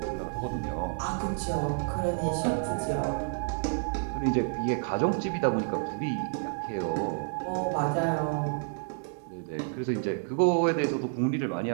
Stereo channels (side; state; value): left; silent; 58 dB below the other